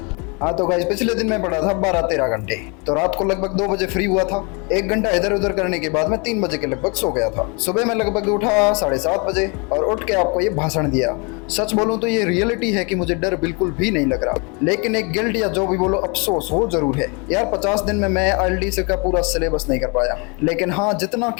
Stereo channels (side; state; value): right; quieter; 32.0 dB